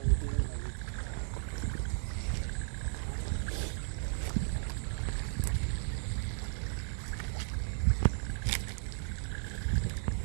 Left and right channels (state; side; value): silent; left; 55 dB below the other